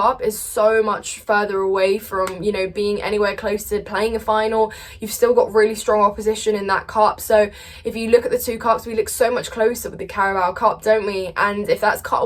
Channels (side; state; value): both; identical; correlation 1.00